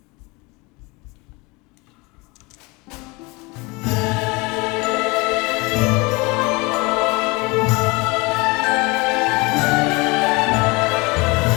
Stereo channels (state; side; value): quieter; right; 26.1 dB